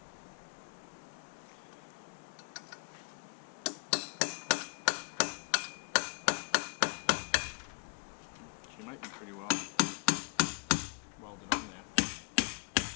She might be pretty well welded on there.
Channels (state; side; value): quieter; right; 35.9 dB